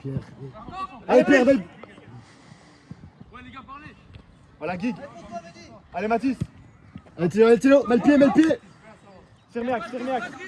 Allez, Pierre. Belle. Voilà Guig. Allez Mathis. Allez, Théo. Mal pied. Sermiac.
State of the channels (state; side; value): identical; both; correlation 1.00